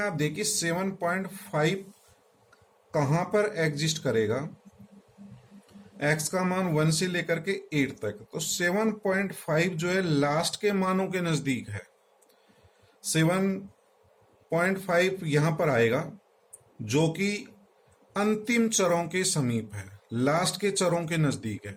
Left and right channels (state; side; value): identical; both; correlation 1.00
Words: देखिए 7.5 कहां पर एग्जिस्ट करेगा। x का मान 1 से लेकर के 8 तक, तो 7.5 जो है लास्ट के मानों के नजदीक है। 7.5 यहां पर आएगा जो कि अंतिम चरों के समीप है, लास्ट के चरों के नजदीक है।